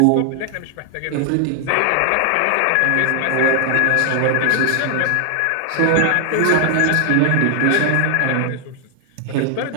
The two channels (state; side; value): different; both; correlation 0.00